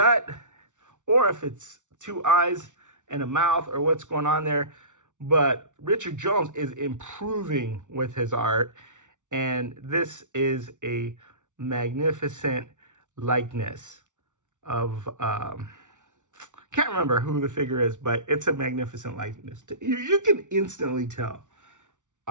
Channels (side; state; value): left; late; 0.86 ms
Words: or if it's 2 eyes and a mouth, or what's going on there. But Richard Jones is improving with his art, and this is a magnificent likeness of can't remember who the figure is, but it's a magnificent likeness. You can instantly tell